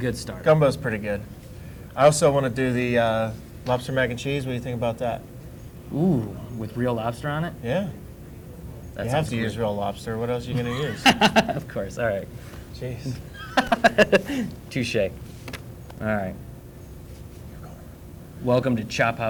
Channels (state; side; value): identical; both; correlation 1.00